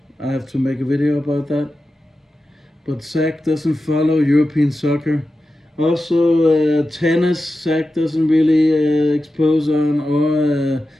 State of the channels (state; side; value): normal; both; correlation 0.92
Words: I have to make a video about that. But Zach doesn't follow European soccer. Also, tennis, Zach doesn't really expose on, or